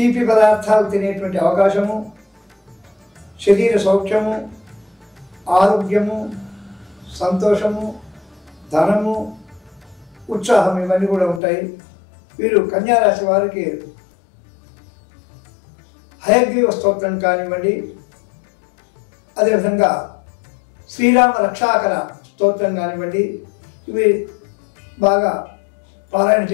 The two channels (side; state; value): right; drops out; at 11.4 s